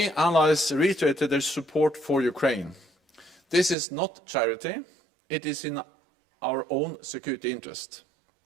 allies reiterated their support for Ukraine. This is not charity, it is in our own security interest.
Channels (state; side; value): drops out; left; at 3.8 s